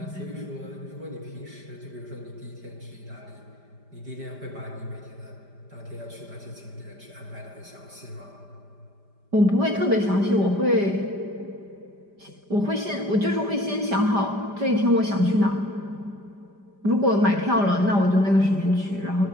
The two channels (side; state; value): left; late; 5.0 ms